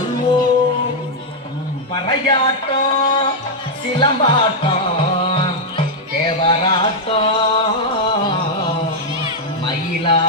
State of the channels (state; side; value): normal; both; correlation -0.01